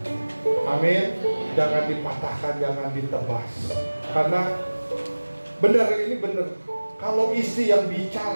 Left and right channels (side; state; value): both; inverted; correlation -1.00